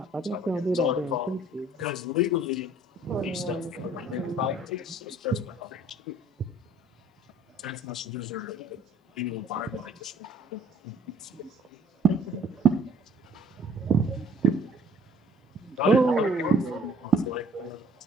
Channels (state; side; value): normal; both; correlation 0.56